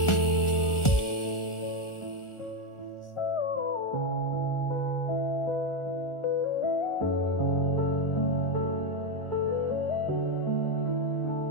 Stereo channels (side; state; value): right; late; 1.4 ms